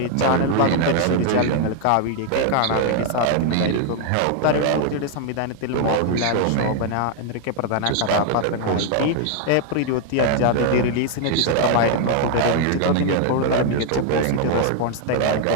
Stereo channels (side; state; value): both; different; correlation 0.00